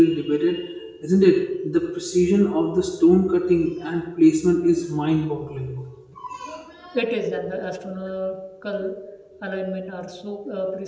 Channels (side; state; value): both; identical; correlation 1.00